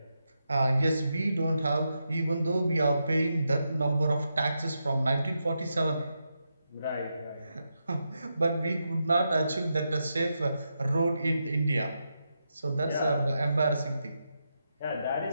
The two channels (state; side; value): inverted; both; correlation -0.86